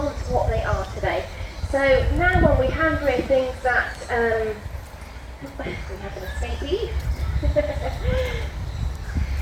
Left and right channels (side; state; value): both; identical; correlation 1.00